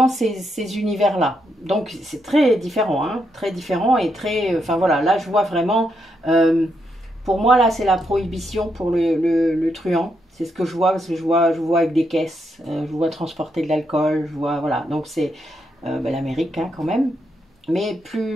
ces univers-là. Donc c'est très différent, hein, très différent et très... Enfin voilà, là je vois vraiment... pour moi là c'est la prohibition pour le truand. C'est ce que je vois, parce que je vois avec des caisses, je vois transporter de l'alcool, je vois... Voilà, donc c'est l'Amérique hein, quand même, mais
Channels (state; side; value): normal; both; correlation 0.80